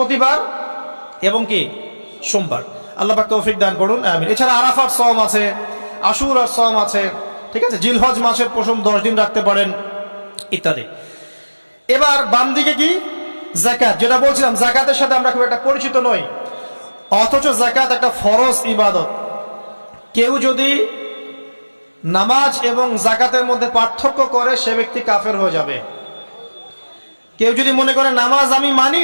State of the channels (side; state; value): both; inverted; correlation -1.00